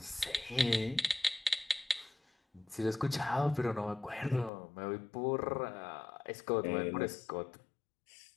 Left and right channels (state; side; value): drops out; right; at 4.5 s